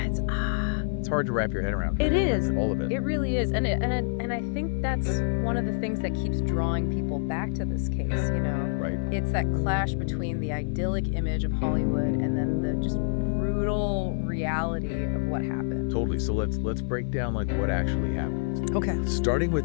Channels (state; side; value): silent; right; digital silence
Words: It's hard to wrap your head around. It is. All of it. It really is. And I think that's one of the things that keeps drawing people back to this case, you know? Right. It's that clash between the idyllic image of Hollywood and then the just brutal reality of what happened. Totally. So let's break down like what actually happened. Okay. Starting with